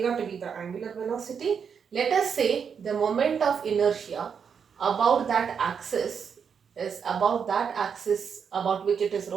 to be the angular velocity, let us say the moment of inertia about that axis is about that axis about which it is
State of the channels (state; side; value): quieter; left; 6.8 dB